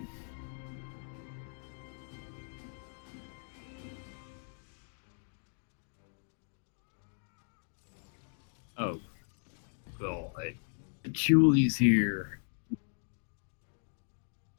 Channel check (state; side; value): silent; right; 53 dB below the other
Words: Oh, God. Patchouli's here.